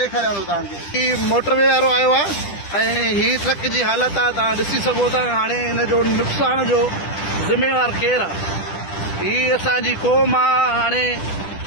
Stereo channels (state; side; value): late; right; 10 ms